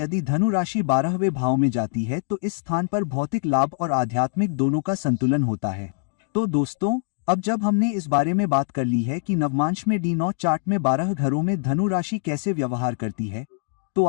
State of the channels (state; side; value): silent; right; digital silence